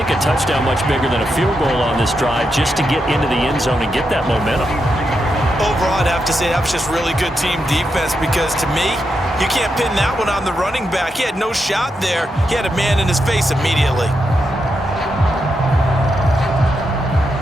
a touchdown much bigger than a field goal on this drive just to get into the end zone and get that momentum. Overall, I'd have to say that was just really good team defense, because to me, you can't pin that one on the running back. He had no shot there. He had a man in his face immediately.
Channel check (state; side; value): normal; both; correlation 0.84